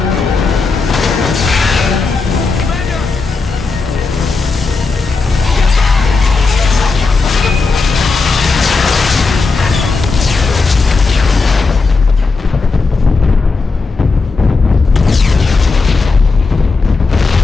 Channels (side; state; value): right; quieter; 4.1 dB